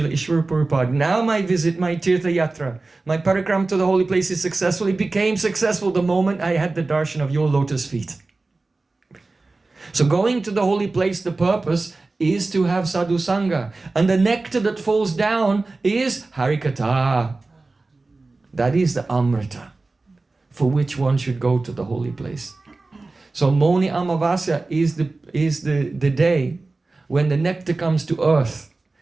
Ishwara Prabhupada, now my visit, my tirtha yatra, my parikram to the holy place is successful. It became successful the moment I had the darshan of your lotus feet. So going to the holy place, the purpose is to have sadhu sangha. And the nectar that falls down is harikatha. That is the amrita for which one should go to the holy place. So Moni Amavasya is the day when the nectar comes to earth.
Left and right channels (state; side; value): quieter; left; 3.4 dB